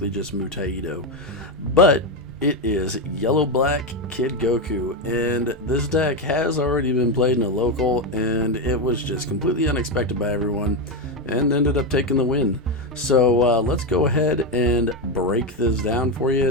just Mutaido. But it is Yellow-Black Kid Goku, and this deck has already been played in a local, and it was just completely unexpected by everyone, and ended up taking the win. So let's go ahead and break this down for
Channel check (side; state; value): both; normal; correlation 0.10